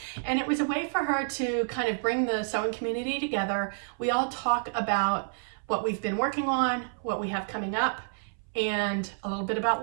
And it was a way for her to kind of bring the sewing community together. We all talk about what we've been working on, what we have coming up, and a little bit about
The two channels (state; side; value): silent; left; 58 dB below the other